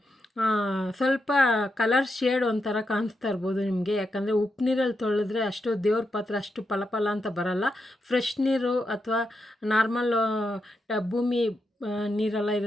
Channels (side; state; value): both; normal; correlation 0.85